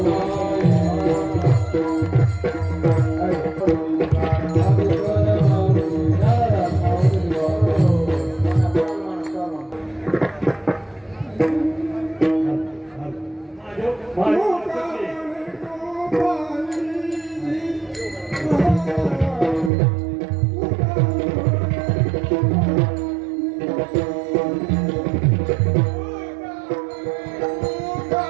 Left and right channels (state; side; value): drops out; left; at 19.7 s